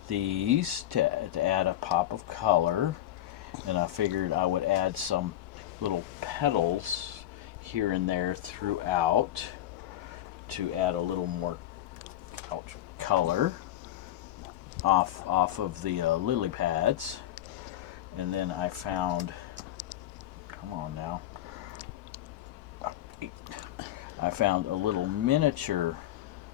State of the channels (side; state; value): right; quieter; 12.9 dB